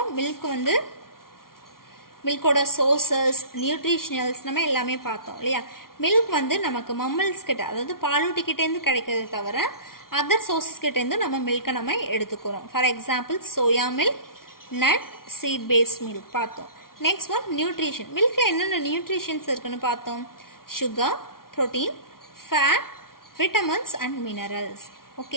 மில்க் வந்து மில்கோட சோர்சஸ், நியூட்ரிஷனல்ஸ் நம்ம எல்லாமே பார்த்தோம் இல்லையா? மில்க் வந்து நமக்கு மம்மல்ஸ் கிட்ட, அதாவது பாலூட்டிக்கிட்டேருந்து கிடைக்கிறது தவிர அதர் சோர்சஸ் கிட்டேருந்து நம்ம மில்கை நம்ம எடுத்துக்கிறோம். For example soya milk, nut, seed based milk பார்த்தோம். Next one nutrition. மில்கில் என்னென்ன நியூட்ரிஷன்ஸ் இருக்குன்னு பார்த்தோம். sugar, protein, fat, vitamins and minerals.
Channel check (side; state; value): right; late; 0.93 ms